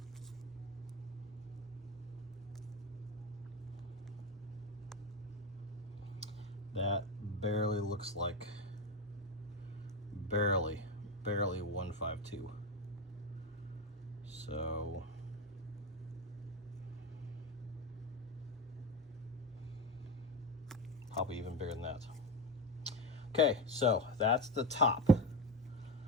That barely looks like, barely 152. So probably even bigger than that. Okay, so that's the top.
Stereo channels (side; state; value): both; normal; correlation 0.18